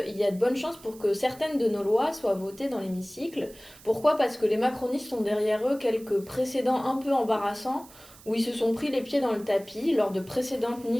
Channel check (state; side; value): noise; right; hiss, 22 dB below the sound